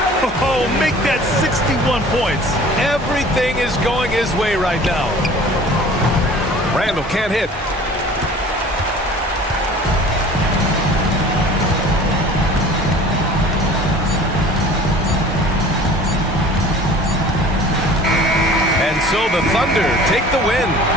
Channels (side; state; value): both; normal; correlation 0.46